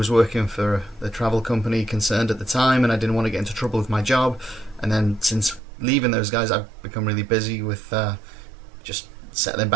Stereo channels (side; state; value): left; drops out; at 5.6 s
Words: working for the travel company concerned at the time and I didn't want to get into trouble with my job, and then since leaving those guys I've become really busy with just settling